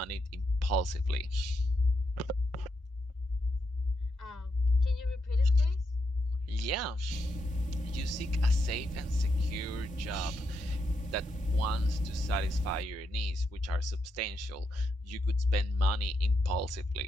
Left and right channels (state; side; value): normal; both; correlation 0.82